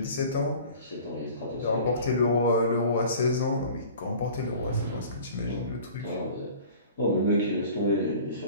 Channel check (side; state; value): both; inverted; correlation -0.44